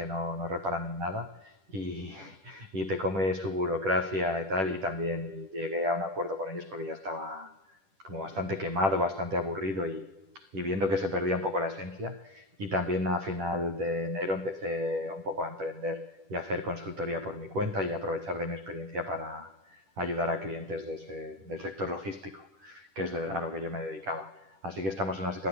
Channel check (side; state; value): left; late; 10 ms